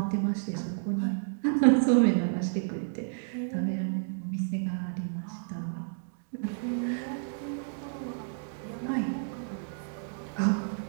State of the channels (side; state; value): left; silent; digital silence